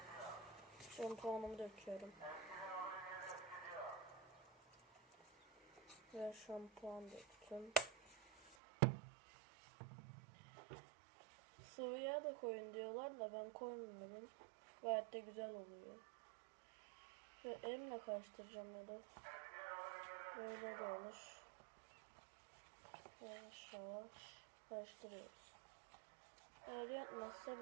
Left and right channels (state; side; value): drops out; left; at 8.6 s